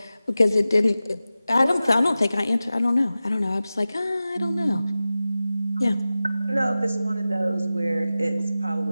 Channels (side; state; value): both; inverted; correlation -0.95